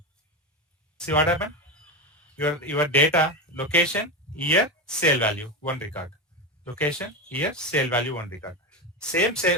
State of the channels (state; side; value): normal; both; correlation 0.17